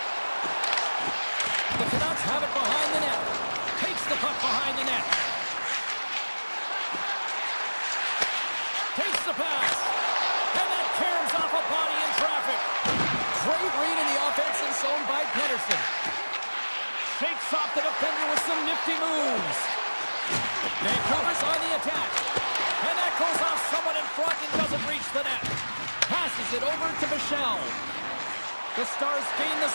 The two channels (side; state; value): both; inverted; correlation -1.00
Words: The Canucks have it behind the net. Takes the puck behind the net. Takes the pass. And that caroms off a body in traffic. Great read in the offensive zone by Pedersen. Shakes off the defender with some nifty moves. Vancouver's on the attack. And that goes off someone in front and doesn't reach the net. Passes it over to Bichelle. The Stars gain the